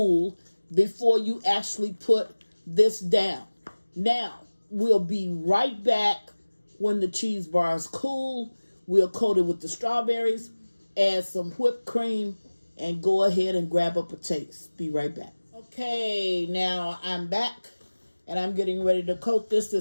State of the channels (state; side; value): inverted; both; correlation -1.00